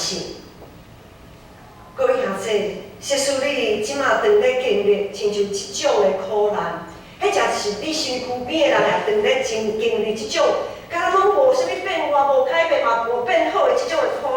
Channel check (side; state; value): both; identical; correlation 1.00